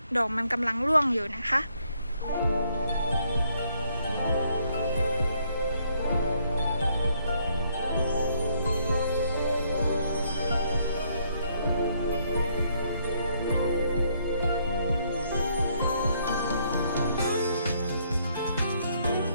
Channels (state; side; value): inverted; both; correlation -0.70